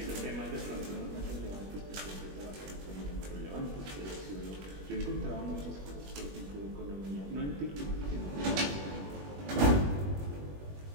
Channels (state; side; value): late; left; 21 ms